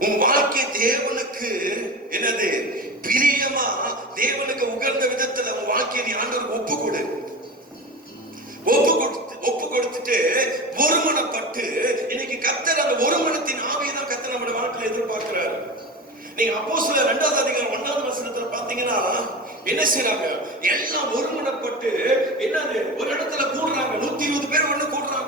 உன் வாழ்க்கை தேவனுக்கு என்னது பிரியமா, தேவனுக்கு உகந்த விதத்துல உன் வாழ்க்கையை நீ ஆண்டவருக்கு ஒப்பு கொடுத்துட்டு ஒருமனப்பட்டு, இன்னைக்கு கர்த்தர் அந்த ஒருமனத்தின் ஆவியை தான் கர்த்தர் நம்முடைய வாழ்க்கையில எதிர்பார்க்கிறார். நீங்க அப்போஸ்தலர் 2வது அதிகாரம் 1வது வசனத்துல பாத்தீங்கன்னா என்ன செய்றாங்க? எல்லாம் ஒருமனப்பட்டு என்னது ஒரு இடத்துல கூடுறாங்க. 120 பேர் ஒண்ணு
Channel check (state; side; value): normal; both; correlation 0.28